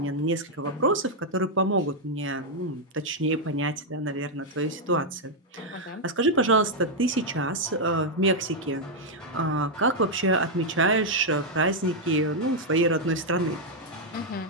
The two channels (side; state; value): both; normal; correlation -0.02